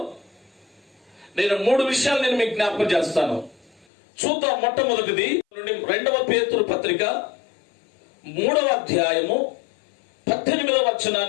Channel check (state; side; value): drops out; right; at 3.9 s